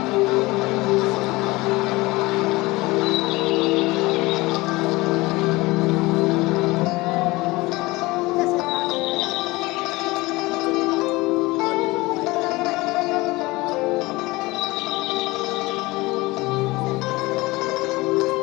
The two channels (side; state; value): right; quieter; 21.5 dB